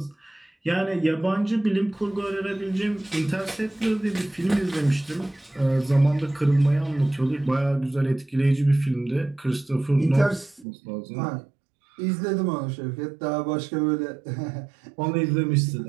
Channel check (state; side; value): drops out; left; at 10.7 s